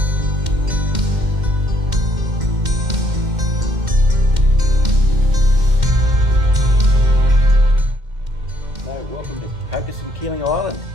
Welcome to Cocos and Keeling Island,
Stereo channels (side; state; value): left; late; 2.1 ms